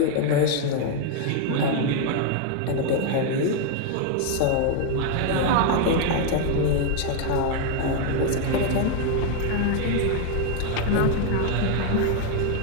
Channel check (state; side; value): different; both; correlation 0.01